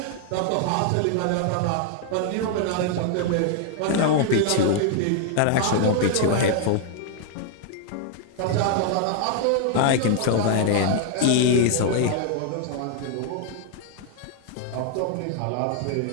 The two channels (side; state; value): both; different; correlation 0.00